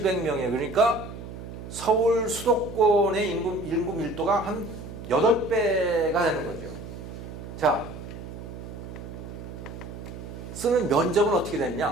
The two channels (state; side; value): noise; right; hum, 11 dB below the sound